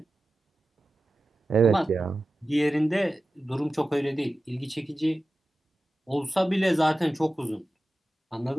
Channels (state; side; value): normal; both; correlation 0.95